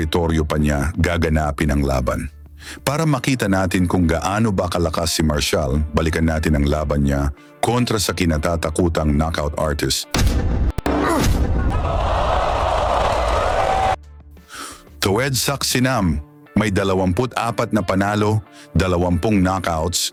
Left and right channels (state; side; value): identical; both; correlation 1.00